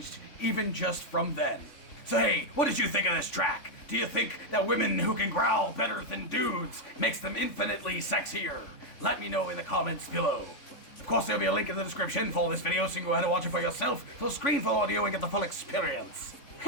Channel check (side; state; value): right; late; 3.5 ms